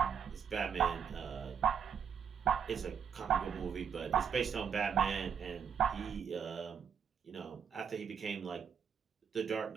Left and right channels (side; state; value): left; quieter; 7.4 dB